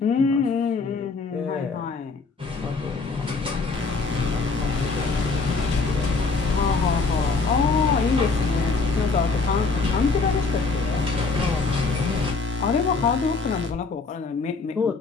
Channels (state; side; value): quieter; right; 4.2 dB